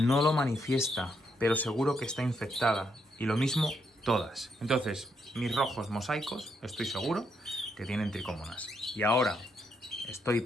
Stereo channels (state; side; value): normal; both; correlation 0.77